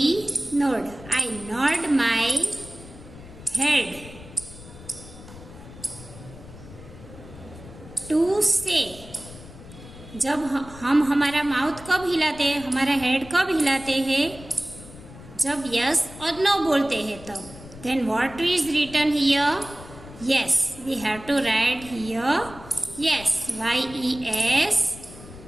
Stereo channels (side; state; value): left; noise; rumble, 17 dB below the sound